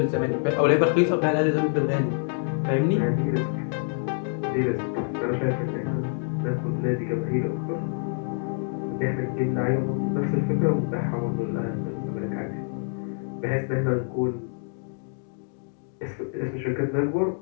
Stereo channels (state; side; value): silent; right; 57 dB below the other